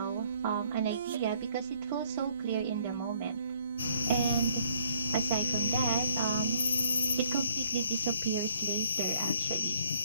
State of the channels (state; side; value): inverted; both; correlation -0.63